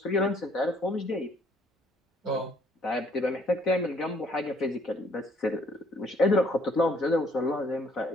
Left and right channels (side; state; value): both; normal; correlation 0.64